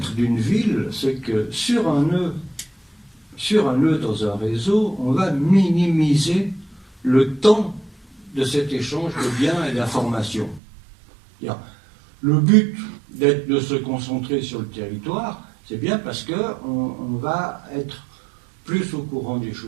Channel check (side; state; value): left; drops out; at 10.6 s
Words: d'une ville, c'est que sur un nœud dans un réseau, on va minimiser le temps de cet échange de biens et d'informations. Le but de se concentrer sur le territoire, c'est bien parce qu'on va être plus au courant des